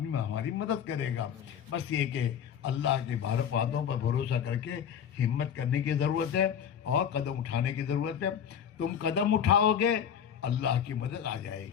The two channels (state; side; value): quieter; right; 8.4 dB